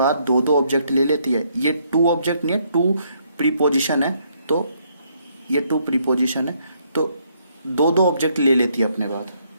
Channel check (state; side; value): inverted; both; correlation -0.71